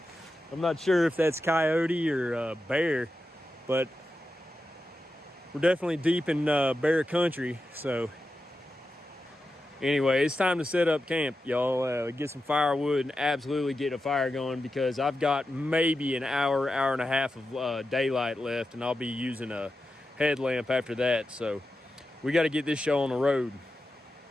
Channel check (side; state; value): both; normal; correlation 0.90